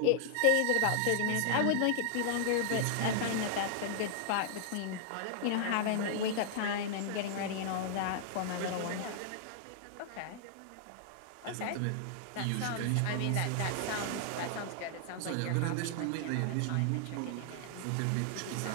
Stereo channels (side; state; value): both; different; correlation -0.01